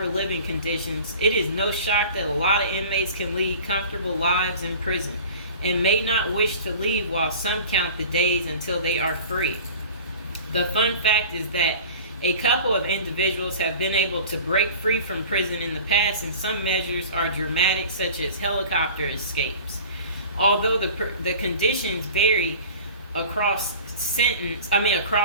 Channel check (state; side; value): inverted; both; correlation -0.40